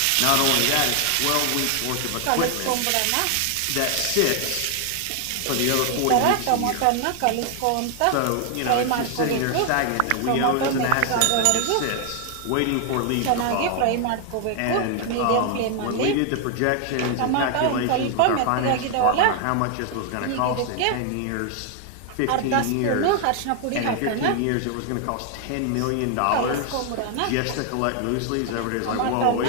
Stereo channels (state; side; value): different; both; correlation 0.00